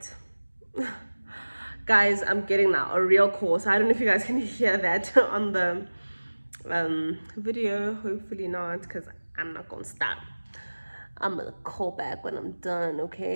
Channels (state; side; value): inverted; both; correlation -1.00